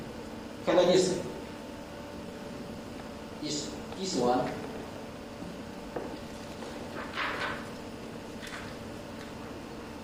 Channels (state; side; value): identical; both; correlation 1.00